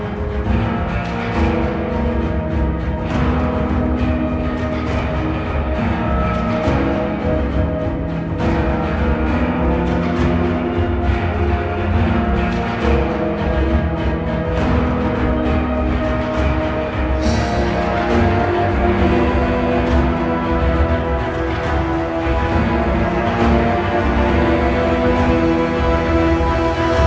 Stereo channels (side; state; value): both; identical; correlation 1.00